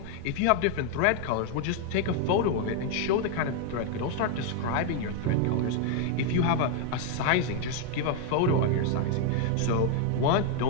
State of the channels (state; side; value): different; both; correlation 0.00